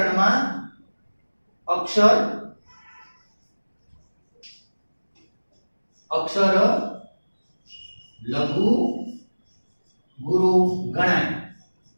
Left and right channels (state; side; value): inverted; both; correlation -1.00